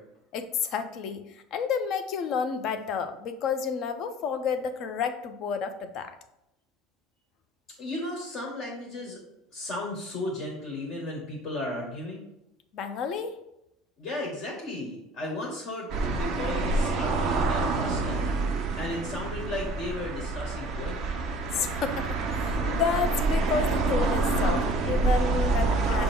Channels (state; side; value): normal; both; correlation 0.49